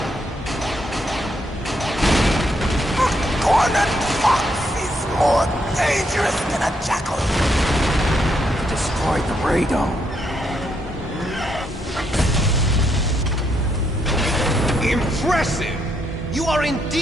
Cornered fox is more dangerous than a jackal. Destroyed the radome. Impressive! You are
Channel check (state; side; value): normal; both; correlation 0.76